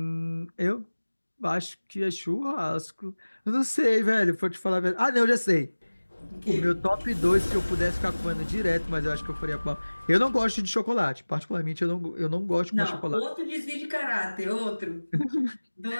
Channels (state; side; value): inverted; both; correlation -1.00